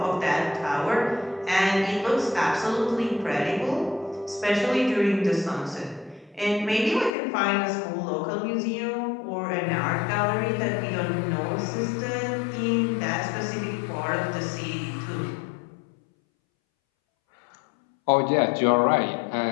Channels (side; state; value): right; drops out; at 7.1 s